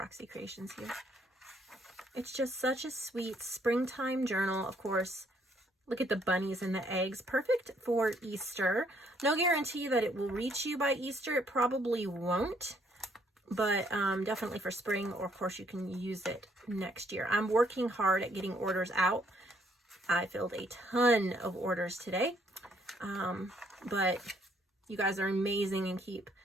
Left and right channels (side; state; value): both; normal; correlation 0.68